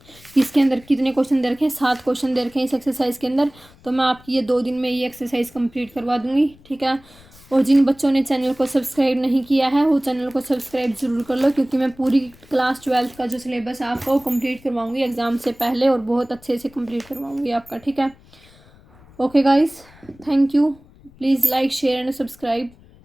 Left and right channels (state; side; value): noise; left; rumble, 26 dB below the sound